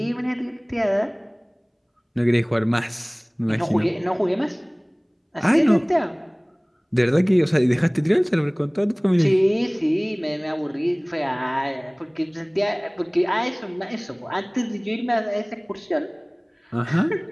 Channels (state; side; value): identical; both; correlation 1.00